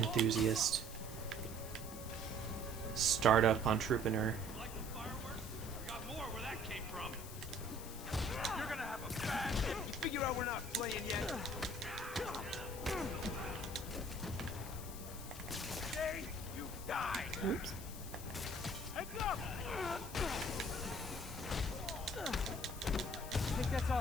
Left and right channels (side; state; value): left; noise; hiss, 13 dB below the sound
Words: startup entrepreneur. Like the fireworks? I got more where that came from. You're gonna have a bad. You figure out we're not playing yet. Today, you die. Oops. Heads up! I think that's all